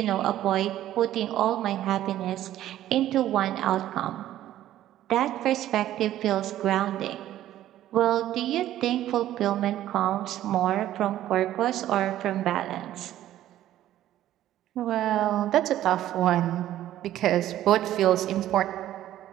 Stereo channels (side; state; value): left; quieter; 13.0 dB